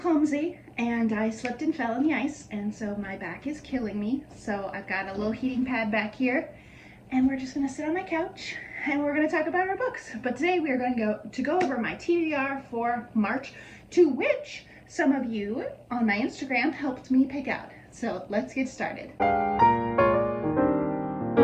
and I slipped and fell in the ice, and so my back is killing me. So I've got a little heating pad back here, and we're just gonna sit on my couch and we're gonna talk about our books. But today we are going to go over my TBR for March, to which some of you on my Instagram helped me pick out. So let's get started.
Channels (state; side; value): identical; both; correlation 1.00